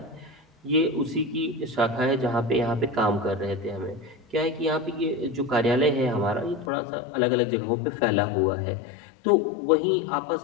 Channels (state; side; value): drops out; right; at 6.7 s